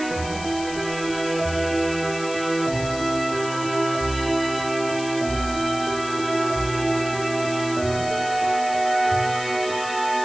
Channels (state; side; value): noise; left; hiss, 12 dB below the sound